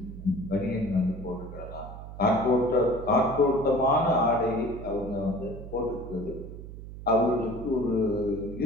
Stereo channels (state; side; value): noise; right; hum, 12 dB below the sound